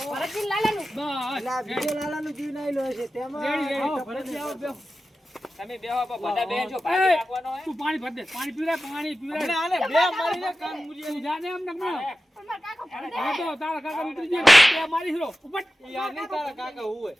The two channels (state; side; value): normal; both; correlation 0.94